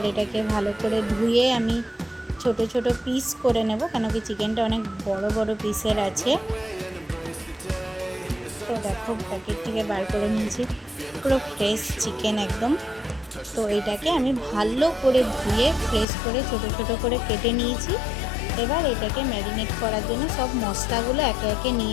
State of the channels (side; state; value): right; drops out; at 16.1 s